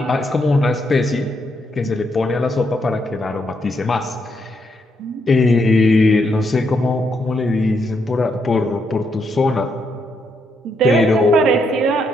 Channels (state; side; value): normal; both; correlation 0.78